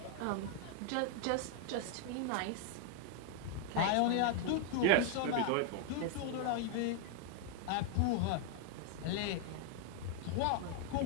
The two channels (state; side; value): different; both; correlation 0.00